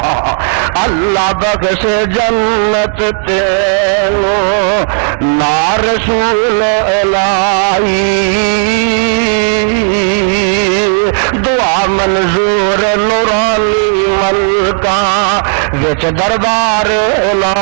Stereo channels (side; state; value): left; silent; digital silence